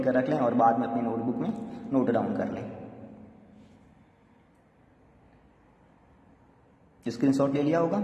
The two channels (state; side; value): identical; both; correlation 1.00